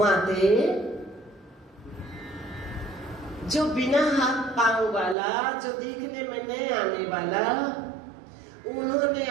जो बिना हाथ पांव वाला, जो देखने में नहीं आने वाला, उन्होंने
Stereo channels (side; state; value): left; drops out; at 5.2 s